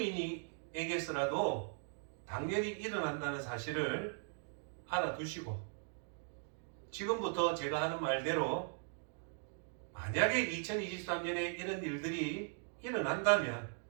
당연히 일어난다는 사실을 알아두시고 지금부터 제가 하는 말대로 만약에 2023년에 이런 일들이 일어난다면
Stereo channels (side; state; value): left; silent; 52 dB below the other